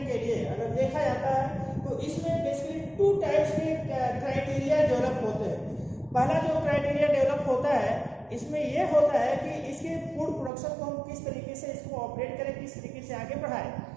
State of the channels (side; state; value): left; drops out; at 10.5 s